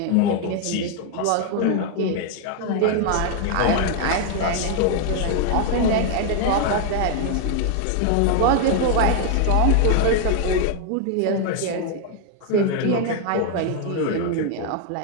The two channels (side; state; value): both; different; correlation 0.00